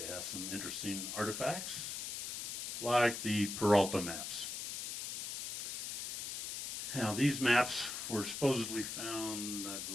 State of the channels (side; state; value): left; noise; hiss, 4 dB below the sound